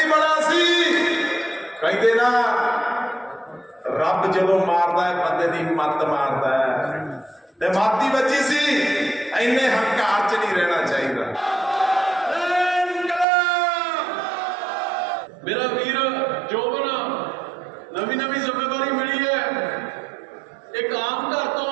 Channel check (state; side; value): drops out; left; at 13.2 s